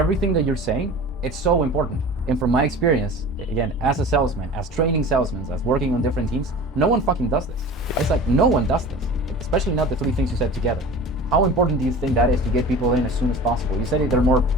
that you're saying, it's so important. And from my experience, again, as a salesman, as training salesmen, as working on different teams, no one fucking does this. It's like no one does this, especially not the three things you said together. How important do you think that is to get people in as soon as possible? You said they're more,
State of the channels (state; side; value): normal; both; correlation 0.38